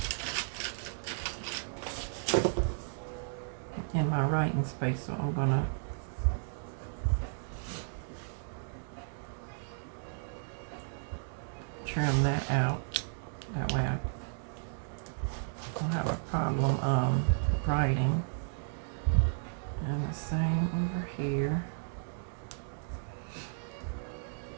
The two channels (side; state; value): left; silent; digital silence